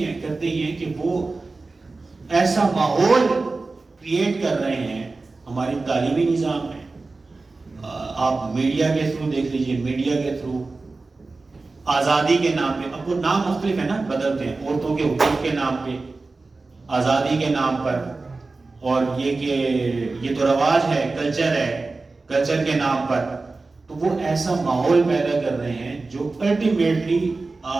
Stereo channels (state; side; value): quieter; left; 3.6 dB